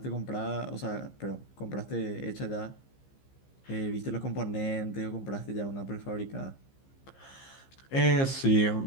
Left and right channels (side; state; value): right; late; 15 ms